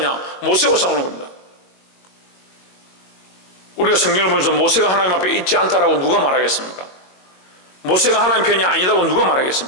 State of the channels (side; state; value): right; late; 22 ms